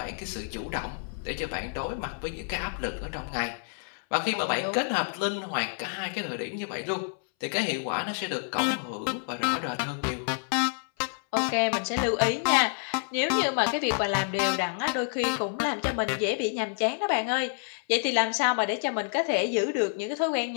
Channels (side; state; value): right; silent; 59 dB below the other